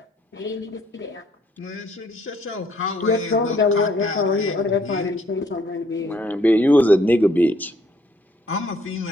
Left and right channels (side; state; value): both; normal; correlation 0.65